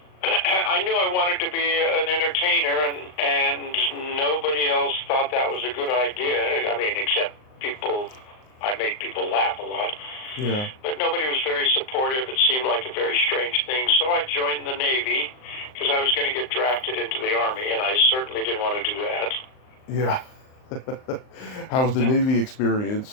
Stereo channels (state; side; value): late; right; 39 ms